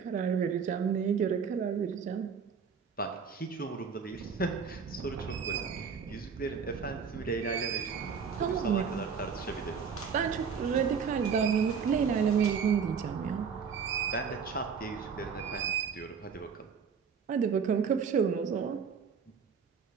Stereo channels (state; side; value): quieter; left; 6.3 dB